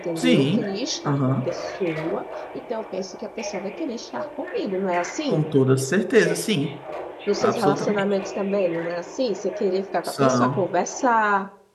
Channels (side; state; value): both; identical; correlation 1.00